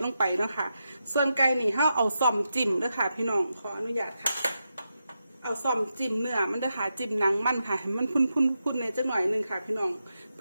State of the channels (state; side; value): inverted; both; correlation -0.87